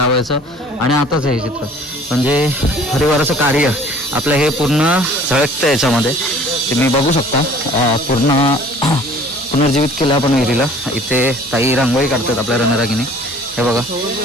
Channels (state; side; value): normal; both; correlation 0.51